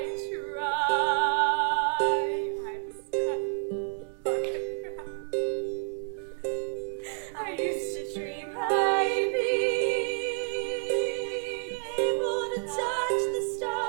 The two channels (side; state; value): left; silent; 58 dB below the other